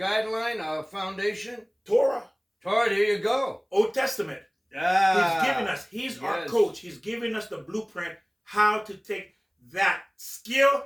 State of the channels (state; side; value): identical; both; correlation 1.00